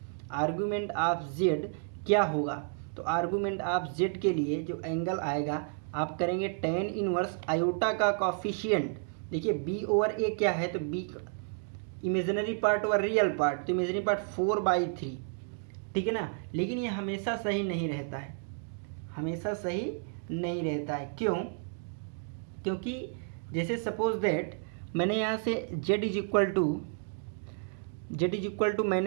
argument of z क्या होगा? तो आर्गुमेंट ऑफ z के लिए जो एंगल आएगा आप करेंगे tan इनवर्स आयोटा का कॉफिशिएंट। देखिए b ओवर a क्या है, तो b imaginary part over real part, तो इमेजिनरी पार्ट 4/3, ठीक है ना। लेकिन ये हमेशा सही नहीं रहता है, हमेशा सही नहीं रहता है। क्यों? क्योंकि जैसे सपोज दैट मैंने यहाँ से z इज इक्वल टू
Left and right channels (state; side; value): silent; left; 57 dB below the other